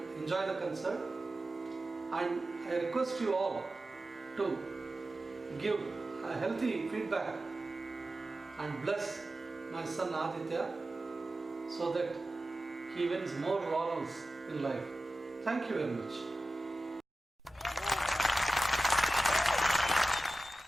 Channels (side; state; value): both; normal; correlation 0.93